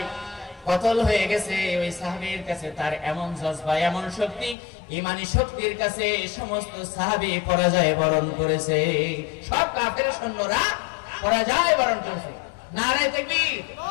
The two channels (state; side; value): drops out; right; at 4.5 s